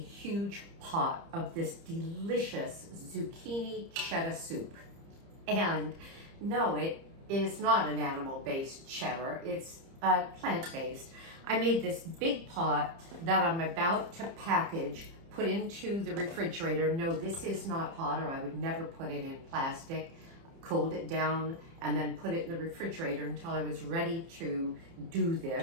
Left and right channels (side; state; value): left; late; 30 ms